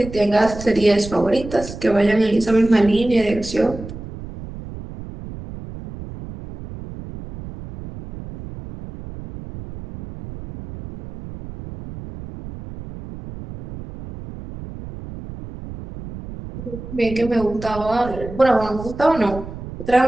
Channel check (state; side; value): noise; right; rumble, 12 dB below the sound